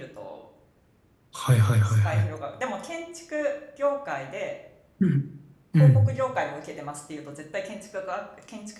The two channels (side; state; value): both; identical; correlation 1.00